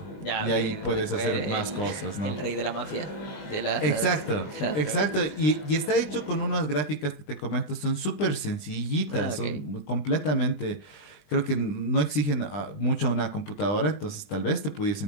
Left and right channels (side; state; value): right; late; 20 ms